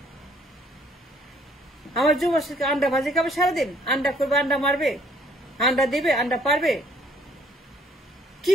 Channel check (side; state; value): both; normal; correlation 0.61